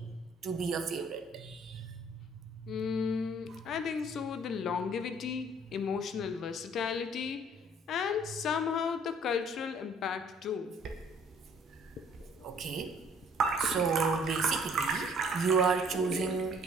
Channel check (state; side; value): normal; both; correlation 0.58